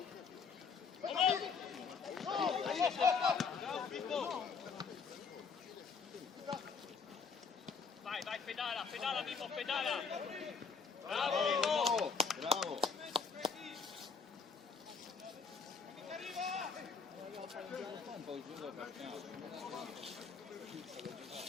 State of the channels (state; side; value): quieter; right; 5.4 dB